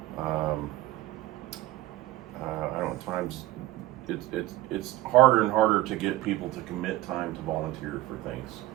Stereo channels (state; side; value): quieter; left; 16.7 dB